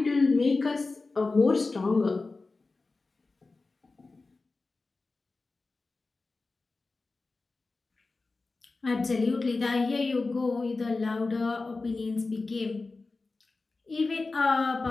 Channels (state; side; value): quieter; right; 3.7 dB